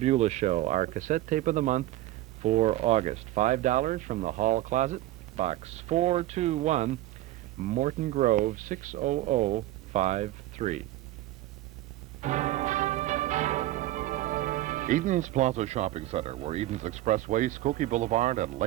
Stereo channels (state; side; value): quieter; left; 15.5 dB